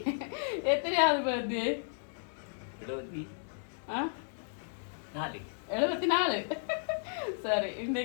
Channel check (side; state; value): right; silent; digital silence